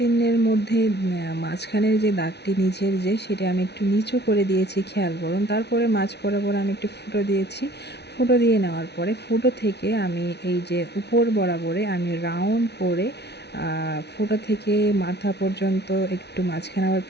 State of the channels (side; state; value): right; late; 0.49 ms